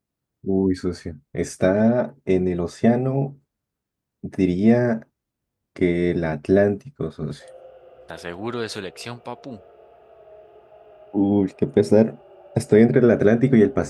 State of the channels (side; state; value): both; identical; correlation 1.00